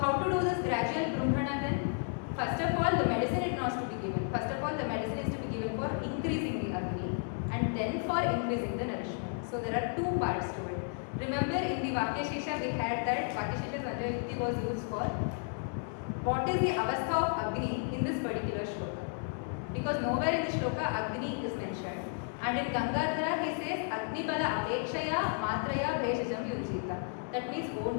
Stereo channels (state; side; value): silent; right; 56 dB below the other